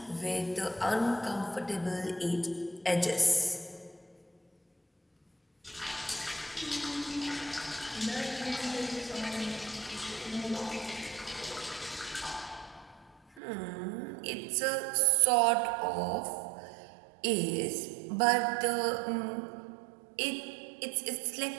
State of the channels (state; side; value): drops out; left; at 13.4 s